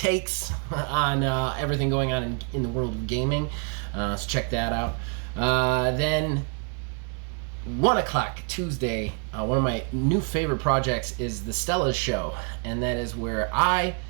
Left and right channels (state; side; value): quieter; left; 39.3 dB